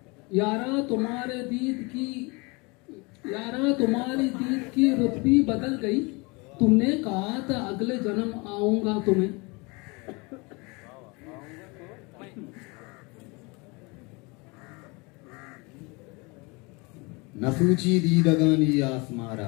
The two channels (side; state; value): right; quieter; 27.6 dB